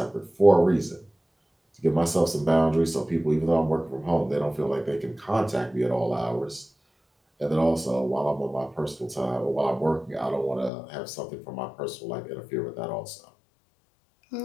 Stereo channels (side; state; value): right; drops out; at 10.7 s